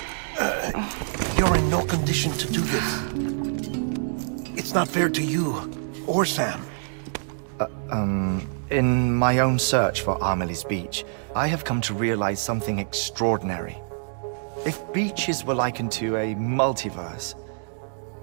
You're in no condition to do this. It's not fair to you, or Sam. In my own search for Amelie's Beach, I have come to realize something extraordinary. If beaches were likened to a multiverse,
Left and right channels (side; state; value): left; silent; digital silence